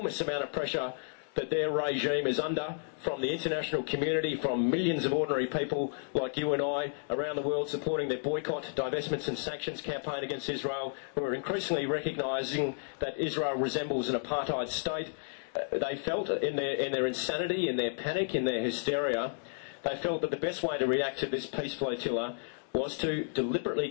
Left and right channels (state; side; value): silent; right; digital silence